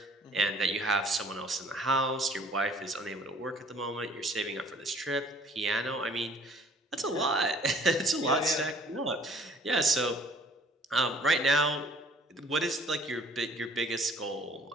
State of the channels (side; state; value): both; normal; correlation 0.55